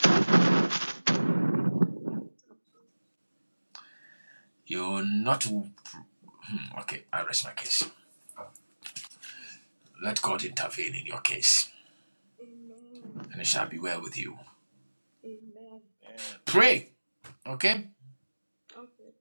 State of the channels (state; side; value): inverted; both; correlation -1.00